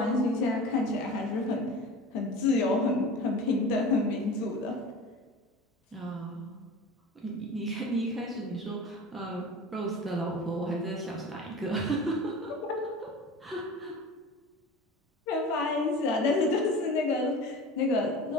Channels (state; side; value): normal; both; correlation 0.36